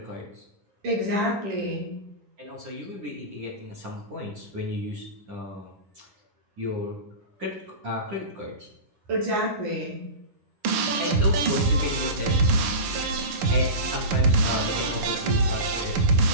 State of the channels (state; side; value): late; left; 11 ms